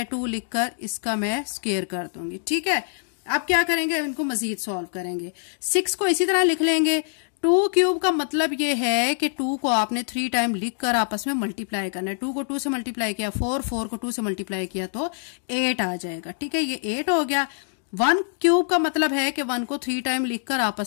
लिखकर इसका मैं स्क्वायर कर दूंगी। ठीक है, अब क्या करेंगे, इनको मजीद सॉल्व करेंगे। 6 को इसी तरह लिख लेंगे। 2³ का मतलब ये है कि 2 को आपने 3 टाइम लिखकर आपस में मल्टीप्लाई करना है। 2 को 2 से मल्टीप्लाई किया 4, 4 को 2 से मल्टीप्लाई किया तो 8 आ जाएगा। ठीक है, ये 8 हो गया। 1³ का मतलब है कि 1 को 3 टाइम लिखकर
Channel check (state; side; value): silent; right; digital silence